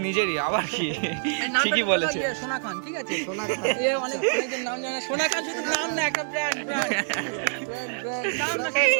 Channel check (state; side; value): silent; left; digital silence